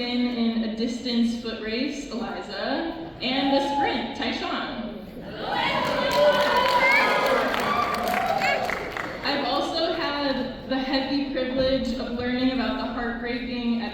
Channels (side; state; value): both; identical; correlation 1.00